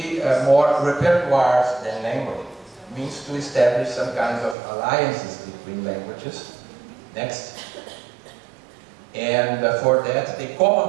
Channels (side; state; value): left; drops out; at 4.5 s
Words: more repertoires than language? Means to establish some kinds of alliances between languages. Next. And for that, the